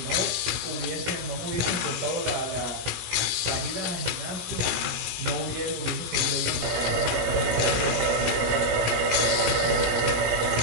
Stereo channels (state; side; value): late; left; 16 ms